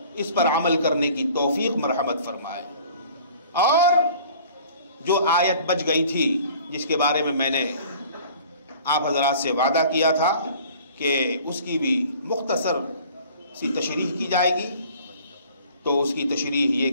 اس پر عمل کرنے کی توفیق مرحمت فرمائے۔ اور جو آیت بچ گئی تھی جس کے بارے میں نے آپ حضرات سے وعدہ کیا تھا کہ اس کی بھی مختصر سی تشریح کی جائے گی، تو اس کی تشریح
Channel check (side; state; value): both; inverted; correlation -0.49